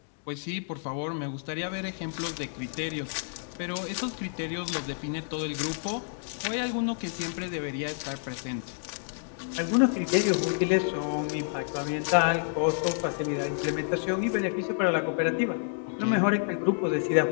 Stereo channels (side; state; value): right; silent; digital silence